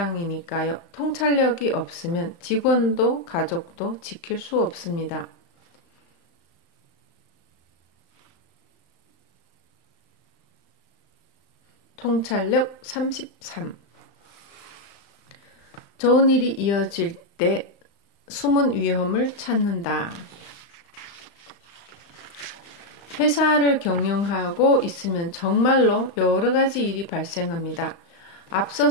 통찰력이 없으면 직원도 가족도 지킬 수 없습니다. 통찰력 33. 좋은 일이 이어질 때 숨은 위험을 찾는다. 회사를 경영하고 있으면 정말로 여러 가지 일이 발생합니다. 앞서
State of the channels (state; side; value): late; right; 35 ms